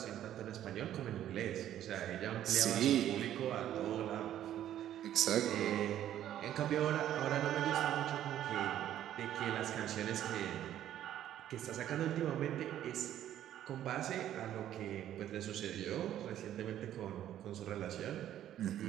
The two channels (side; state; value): left; quieter; 11.7 dB